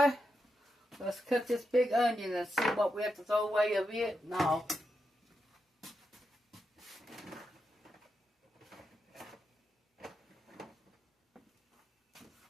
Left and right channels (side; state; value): both; normal; correlation 0.86